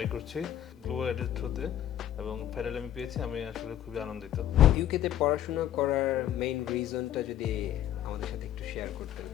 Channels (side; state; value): right; quieter; 11.3 dB